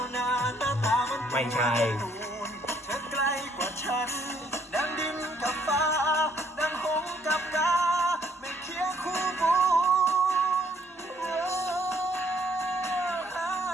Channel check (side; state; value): both; normal; correlation 0.67